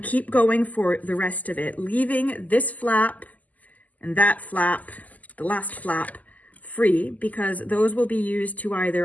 keep going for the rest of it, leaving this flap and that flap, the last flap, free, because those will be used to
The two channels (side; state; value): right; late; 0.078 ms